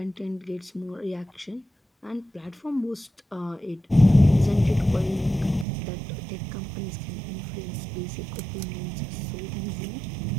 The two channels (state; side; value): drops out; left; at 5.7 s